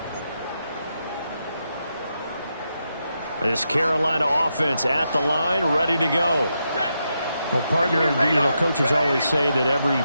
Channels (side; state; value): both; inverted; correlation -0.84